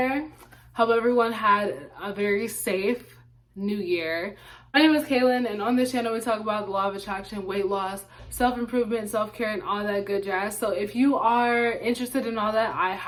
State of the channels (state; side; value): identical; both; correlation 1.00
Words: Hope everyone had a very safe New Year. My name is Kaylin, and on this channel we talk about the law of attraction, weight loss, self-improvement, self-care, and all that good jazz. So if you are interested in all that, I